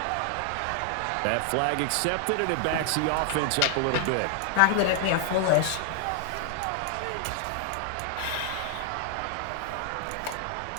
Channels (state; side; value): different; both; correlation 0.00